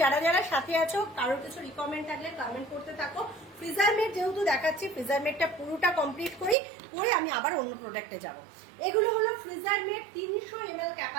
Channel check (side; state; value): left; drops out; at 6.6 s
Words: যারা যারা সাথে আছো কারোর কিছু রিকমেন্ড থাকলে কমেন্ট করতে থাকো। ফ্রিজার মেট যেহেতু দেখাচ্ছি, ফ্রিজার মেটটা পুরোটা কমপ্লিট করি, করে আমি আবার অন্য প্রোডাক্টে যাব। এগুলো হলো freezer mate 300 ml